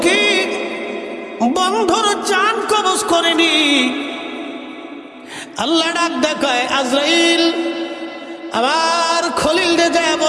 কি বন্ধুর জান কবজ করেনি। আল্লাহ ডাক দেখায়, আজরাইল আবার খলিল রে যায়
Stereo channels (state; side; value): identical; both; correlation 1.00